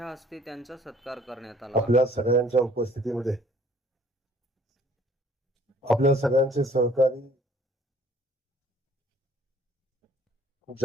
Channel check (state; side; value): normal; both; correlation 0.58